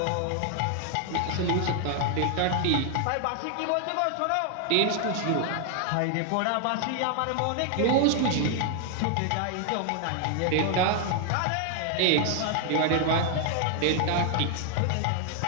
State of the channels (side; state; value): both; different; correlation 0.00